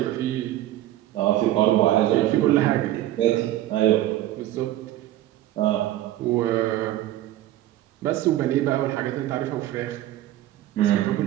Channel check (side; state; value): left; quieter; 14.0 dB